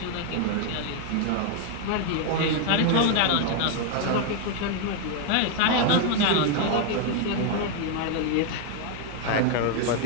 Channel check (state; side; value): different; both; correlation 0.00